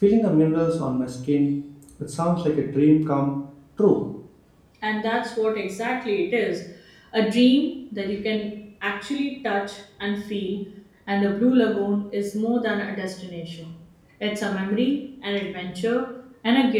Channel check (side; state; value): both; identical; correlation 1.00